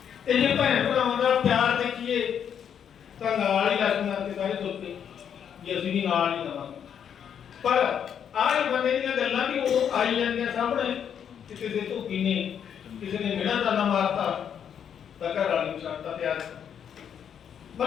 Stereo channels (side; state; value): right; quieter; 8.4 dB